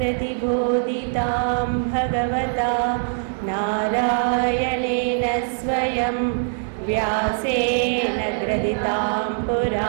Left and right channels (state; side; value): silent; left; digital silence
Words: भगवता नारायणेन स्वयं व्यासेन ग्रथितां